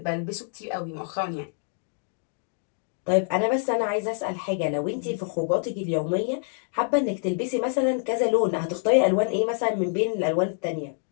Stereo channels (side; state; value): right; silent; 61 dB below the other